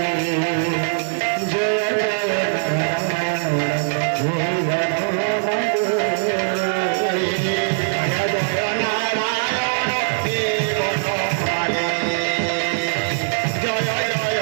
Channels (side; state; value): left; silent; digital silence